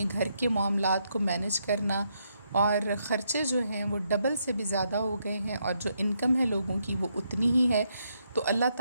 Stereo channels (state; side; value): inverted; both; correlation -0.77